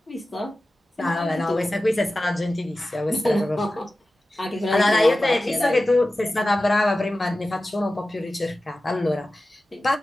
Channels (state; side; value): normal; both; correlation 0.95